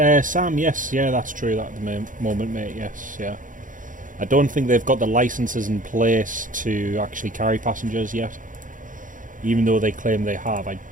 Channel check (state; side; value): late; left; 0.38 ms